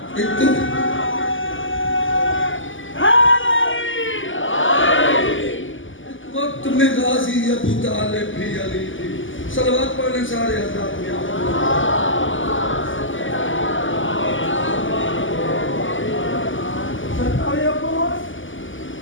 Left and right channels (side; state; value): right; late; 0.57 ms